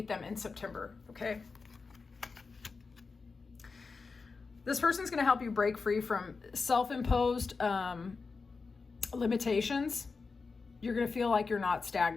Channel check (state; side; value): quieter; right; 4.5 dB